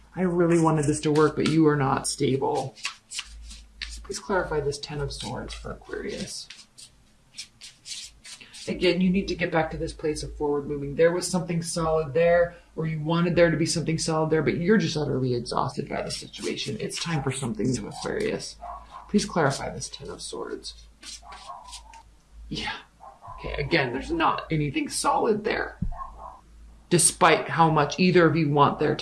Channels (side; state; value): both; identical; correlation 1.00